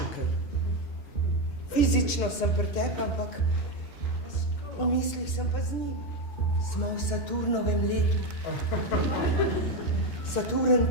Fizično sem pri tebi, ampak v mislih sem pa z njim. Smo v Saturnovem letu. Saturn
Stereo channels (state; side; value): late; right; 2.8 ms